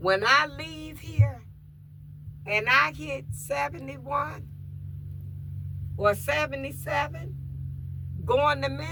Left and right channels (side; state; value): both; identical; correlation 1.00